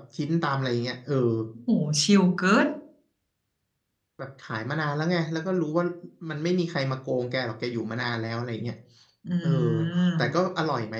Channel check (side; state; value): both; identical; correlation 1.00